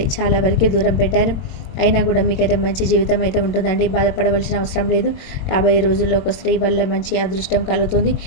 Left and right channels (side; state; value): right; late; 22 ms